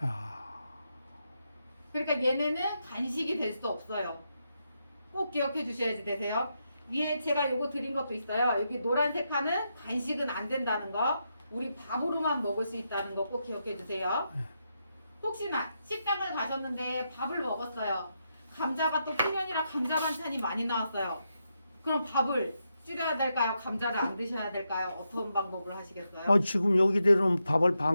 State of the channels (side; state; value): both; inverted; correlation -0.84